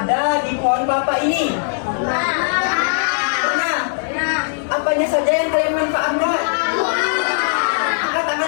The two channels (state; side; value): silent; right; 56 dB below the other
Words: di pohon kelapa ini? Pernah? Apanya saja yang kalian manfaatkan? Angkat